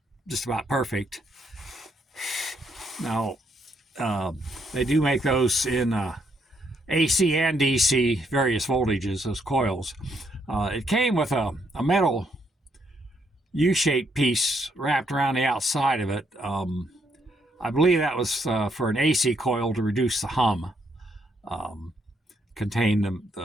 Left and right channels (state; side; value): normal; both; correlation 0.74